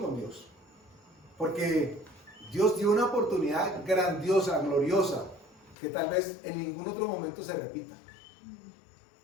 con Dios. Porque Dios dio una oportunidad grandiosa, gloriosa, que tal vez en ningún otro momento se repita.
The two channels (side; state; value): right; drops out; at 5.8 s